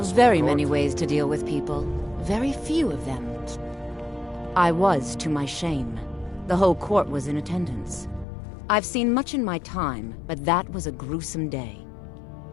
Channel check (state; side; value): drops out; right; at 8.2 s